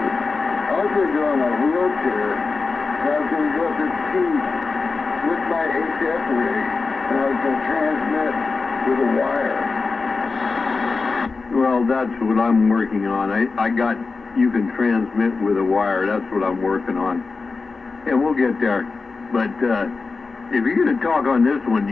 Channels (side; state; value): right; quieter; 4.2 dB